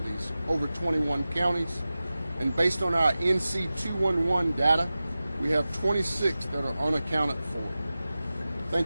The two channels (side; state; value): both; inverted; correlation -0.95